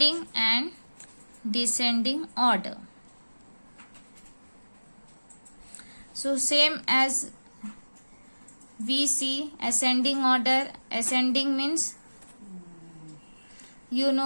and descending order. So same as we see ascending order. Ascending means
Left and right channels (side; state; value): both; inverted; correlation -1.00